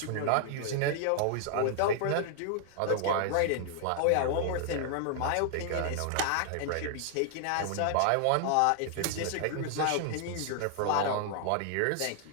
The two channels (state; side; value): different; both; correlation 0.00